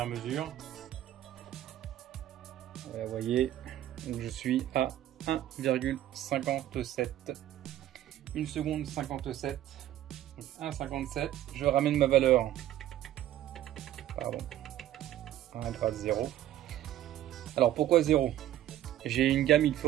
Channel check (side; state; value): left; quieter; 12.7 dB